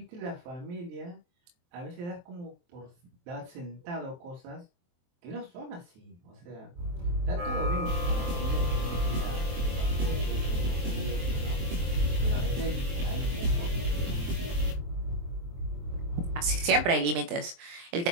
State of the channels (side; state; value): left; late; 23 ms